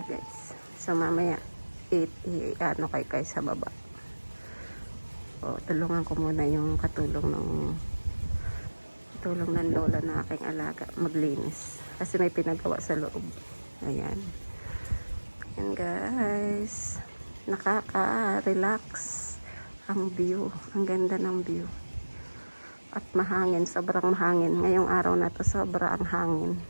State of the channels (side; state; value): both; inverted; correlation -1.00